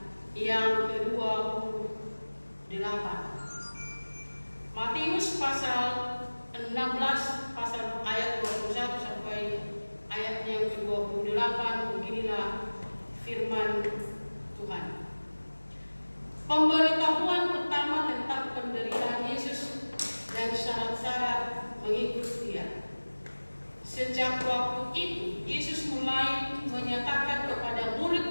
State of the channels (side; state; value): both; inverted; correlation -1.00